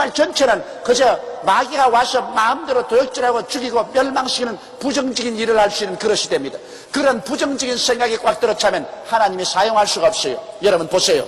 전체는 그저 마귀가 와서 마음대로 도역질하고 죽이고 멸망시키는 부정적인 일을 할 수 있는 그릇이 됩니다. 그런 부정적인 생각이 꽉 들어차면 하나님이 사용할 수가 없어요. 여러분 보세요.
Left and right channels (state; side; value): identical; both; correlation 1.00